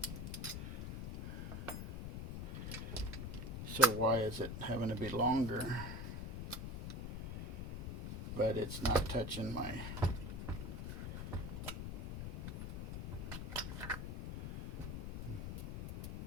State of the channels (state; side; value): noise; left; rumble, 4 dB below the sound